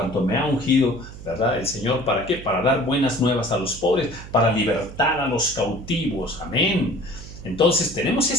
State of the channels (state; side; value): noise; right; hum, 14 dB below the sound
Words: me ha ungido, ¿verdad? El Señor, ¿para qué? Para dar buenas nuevas a los pobres, para libertar a los cautivos, amén. Entonces tenemos